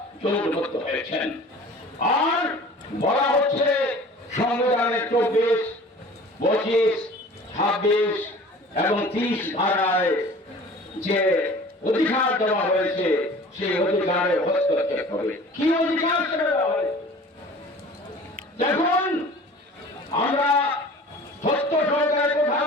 জোটবদ্ধ হয়েছেন। আর বলা হচ্ছে সংবিধানের 24, 25, 26, এবং 30 ধারায় যে অধিকার দেওয়া হয়েছে সেই অধিকারে হস্তক্ষেপ হবে। কি অধিকার সেটা দেওয়া হয়েছে? দেখুন, আমরা সত্য সহকারে কথা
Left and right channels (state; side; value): normal; both; correlation 0.44